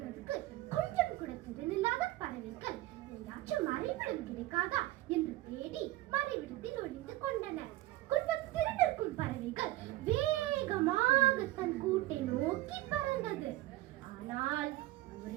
கொஞ்சம் கூட திறனில்லாத பறவைகள் எங்காச்சும் மறைவிடம் கிடைக்காதா என்று தேடி மறைவிடத்தில் ஒளிந்து கொண்டன. கொஞ்சம் திறனிருக்கும் பறவைகள் வேகமாக தன் கூட்டை நோக்கி பறந்தது. ஆனால்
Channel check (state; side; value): quieter; left; 16.9 dB